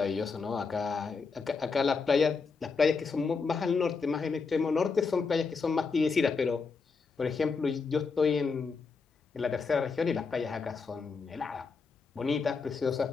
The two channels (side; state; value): right; quieter; 4.8 dB